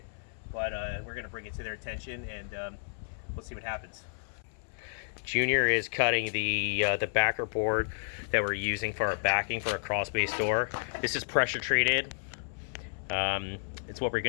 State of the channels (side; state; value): right; silent; 57 dB below the other